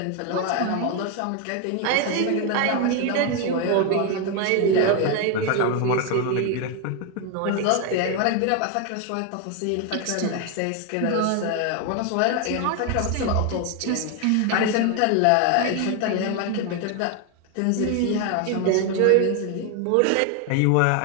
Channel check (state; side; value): different; both; correlation 0.01